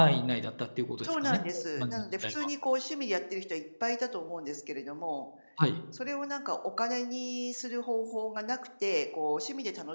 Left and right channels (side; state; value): both; inverted; correlation -1.00